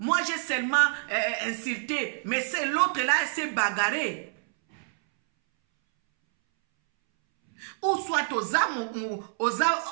j'ai seulement insulté, mais c'est l'autre là, elle s'est bagarrée. Ou soit aux âmes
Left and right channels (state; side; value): silent; left; 60 dB below the other